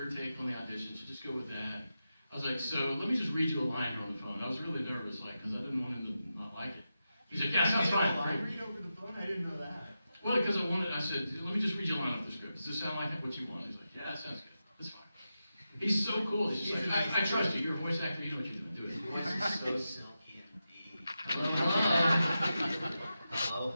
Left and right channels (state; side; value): inverted; both; correlation -0.90